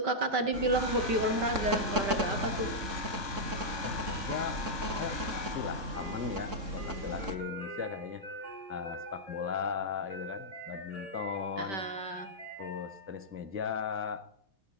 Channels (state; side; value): late; left; 3.6 ms